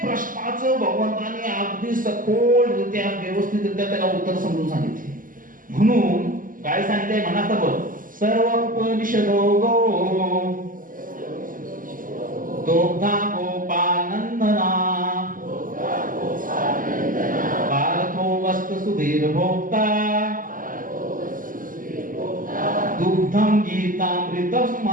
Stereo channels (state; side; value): late; left; 0.40 ms